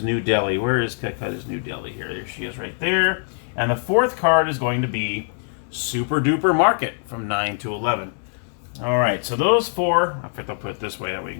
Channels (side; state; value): right; silent; digital silence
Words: New Delhi. Where is Calcutta's New Delhi? Here, there she is right there. And the fourth card is going to be Super Duper Market from 9 to 11. All right, so those four, I think I'll put it this way, that way you